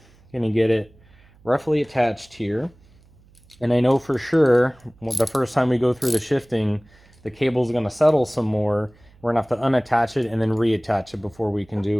I'm going to get it roughly attached here. And I know for sure the first time we go through the shifting, the cable is going to settle some more. We're going to have to unattach it and then reattach it before we can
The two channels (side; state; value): right; noise; hum, 29 dB below the sound